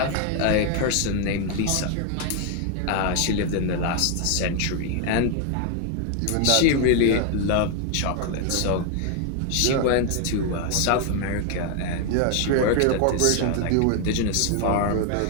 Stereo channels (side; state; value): both; different; correlation 0.01